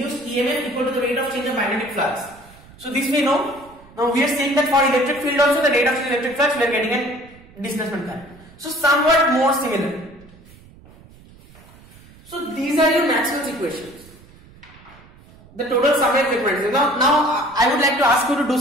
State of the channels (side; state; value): right; noise; rumble, 24 dB below the sound